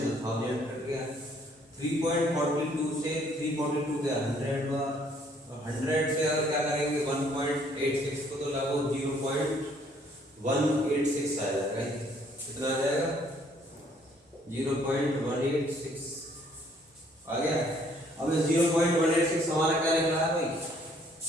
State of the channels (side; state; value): both; normal; correlation 0.63